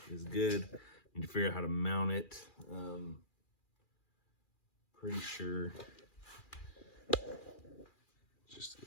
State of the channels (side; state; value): right; late; 2.4 ms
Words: is good. Need to figure out how to mount it. Pretty sure just